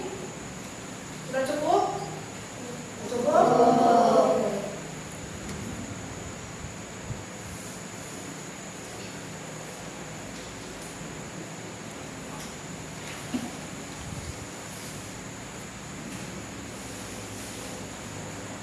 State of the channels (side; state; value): both; identical; correlation 1.00